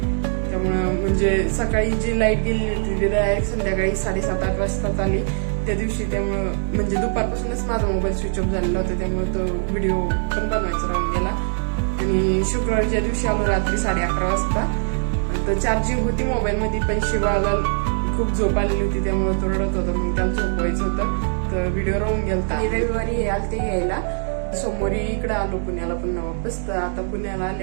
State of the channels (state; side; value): silent; left; 60 dB below the other